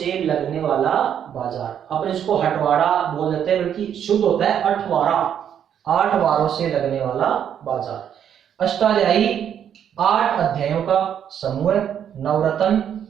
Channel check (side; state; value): left; quieter; 9.1 dB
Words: लगने वाला बाजार, अपन इसको हटवाड़ा बोल देते हैं, बल्कि शुद्ध होता है अठवारा, 8 वारों से लगने वाला बाजार। अष्टाध्यायी 8 अध्यायों का समूह है। नवरत्न